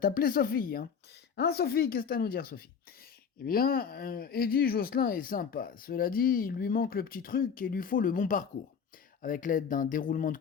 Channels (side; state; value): right; quieter; 6.7 dB